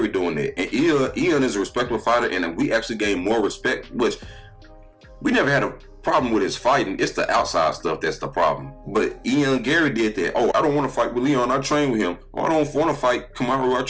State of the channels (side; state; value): both; identical; correlation 1.00